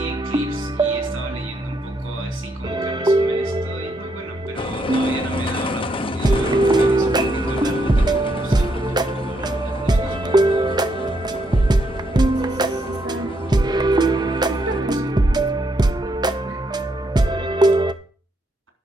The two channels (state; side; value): normal; both; correlation 0.76